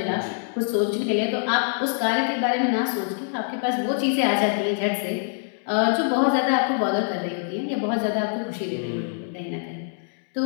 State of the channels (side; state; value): right; silent; digital silence